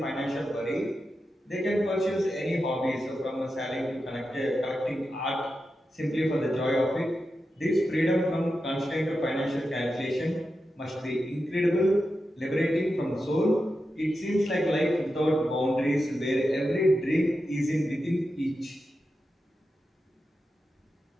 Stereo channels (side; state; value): both; normal; correlation 0.90